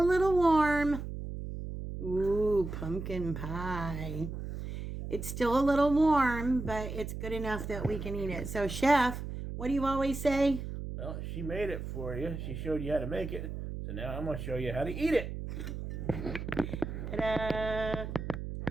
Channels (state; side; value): noise; right; hum, 7 dB below the sound